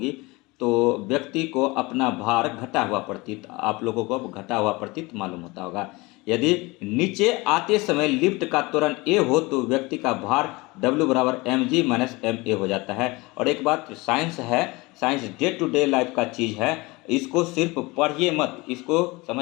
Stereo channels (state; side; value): quieter; right; 23.6 dB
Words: तो व्यक्ति को अपना भार घटा हुआ प्रतीत, आप लोगों को घटा हुआ प्रतीत मालूम होता होगा। यदि नीचे आते समय लिफ्ट का त्वरण ए हो तो व्यक्ति का भार W बराबर mg माइनस ma हो जाता है। और एक बात साइंस है, science day to day life का चीज़ है, इसको सिर्फ पढ़िए मत, इसको